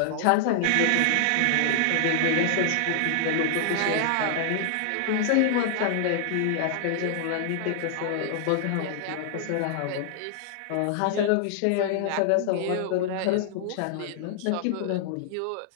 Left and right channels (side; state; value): both; different; correlation 0.00